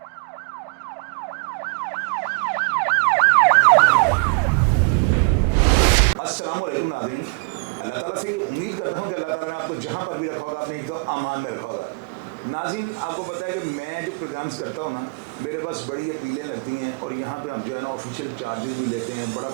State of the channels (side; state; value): left; quieter; 34.7 dB